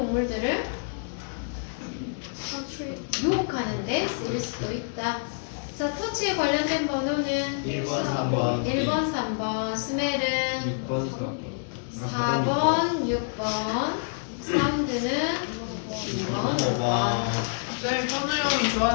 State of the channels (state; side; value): silent; right; 60 dB below the other